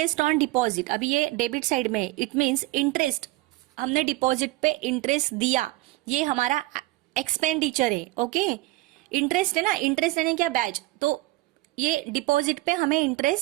on deposit. अभी ये debit side में है. It means interest, हमने डिपॉजिट पे इंटरेस्ट दिया, ये हमारा एक्सपेंडिचर है. ओके, इंटरेस्ट है ना, इंटरेस्ट यानी क्या? बैच. तो ये डिपॉजिट पे हमें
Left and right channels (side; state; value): left; quieter; 19.8 dB